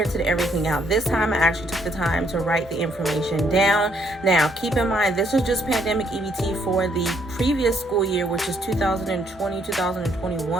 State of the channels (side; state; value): both; normal; correlation 0.70